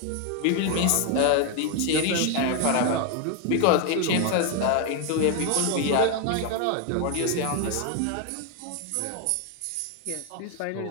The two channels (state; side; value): different; both; correlation 0.01